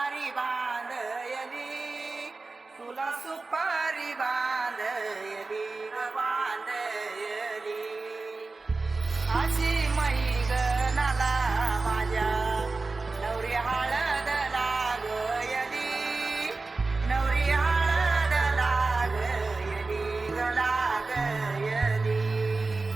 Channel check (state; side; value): quieter; left; 3.7 dB